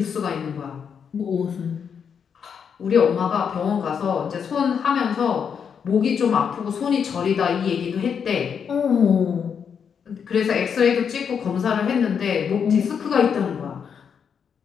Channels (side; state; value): right; quieter; 7.1 dB